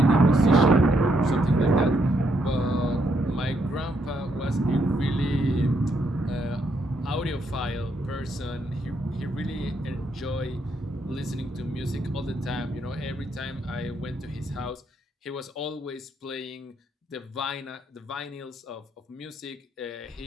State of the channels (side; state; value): both; normal; correlation 0.76